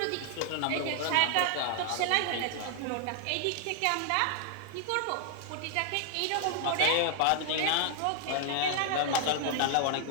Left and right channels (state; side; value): different; both; correlation 0.00